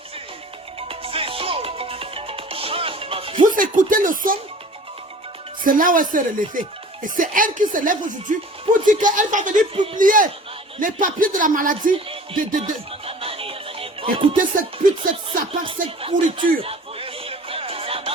Vous écoutez le son? C'est là où elle s'est relevée. Et c'est elle qui se lève aujourd'hui pour dire qu'elle va venir publier les papiers de la maladie. Écoutez cette pute, cette sapin, cette pourriture.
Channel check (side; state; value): both; normal; correlation 0.46